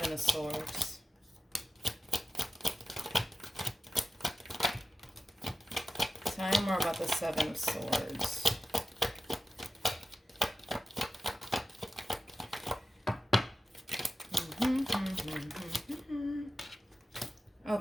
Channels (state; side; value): normal; both; correlation 0.93